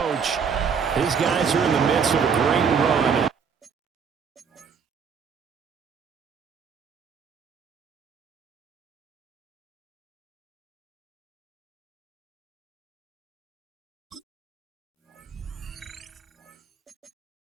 His guys are in the midst of a great run.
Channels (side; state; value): left; quieter; 6.4 dB